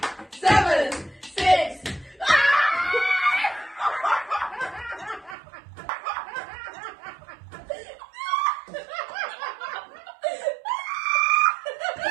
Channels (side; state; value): left; drops out; at 5.4 s